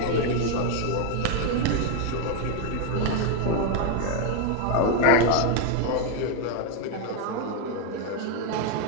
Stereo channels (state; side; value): different; both; correlation 0.01